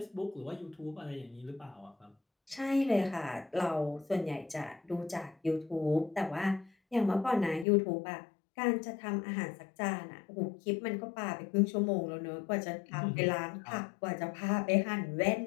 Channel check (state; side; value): drops out; right; at 7.7 s